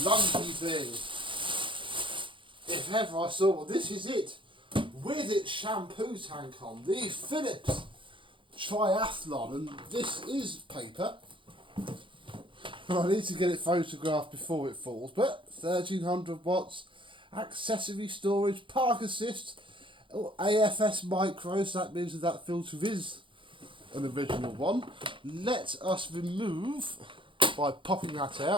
thing. If ever I saw one, this is it. With its shampoo tank on. The Phillips Triathlon. And this is paper. I need to get it photographed before it falls. But 1300 watts. Accessory storage. Park assist. AFS micros. That means that filter is an original one. Let us remove by popping that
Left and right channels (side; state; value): left; late; 0.25 ms